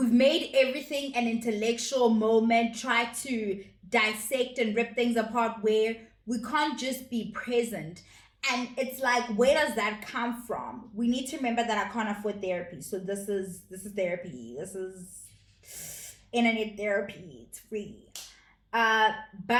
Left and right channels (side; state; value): both; identical; correlation 1.00